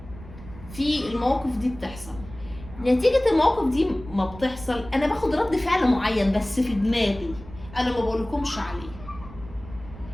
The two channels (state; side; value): noise; right; rumble, 16 dB below the sound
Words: في المواقف دي بتحصل. نتيجة المواقف دي ما بتحصل انا باخد رد فعل معين بس في دماغي، انا ما بقولكمش عليه.